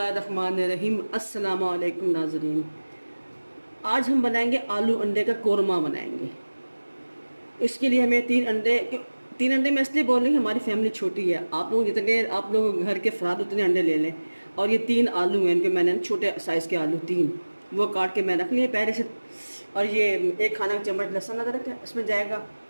अस्सलामु अलैकुम नाज़रीन। आज हम बनाएंगे आलू अंडे का कोरमा बनाएंगे। इसके लिए हमें तीन अंडे मैं इसलिए बोल रही हूँ, हमारी फैमिली छोटी है। आप लोग जितने आप लोग घर के अफराद उतने अंडे ले लें। और ये 3 आलू हैं, इनके मैंने छोटे साइज़ के आलू 3 वो काट के मैं रख लिए पहले से। और ये 1 खाना का चम्मच लहसुन अदरक है इसमें जाएगा।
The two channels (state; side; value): inverted; both; correlation -1.00